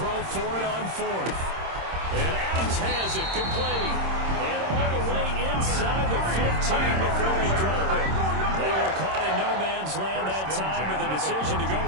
for it on 4th. And Adams has it complete. And all the way inside the 15 before they drop it. They were caught in no man's land that time, but the decision to go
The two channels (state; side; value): late; left; 26 ms